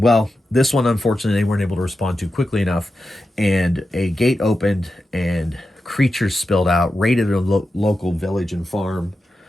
this one, unfortunately, they weren't able to respond to quickly enough, and a gate opened and creatures spilled out, raided a local village and farm,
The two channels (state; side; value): normal; both; correlation 0.91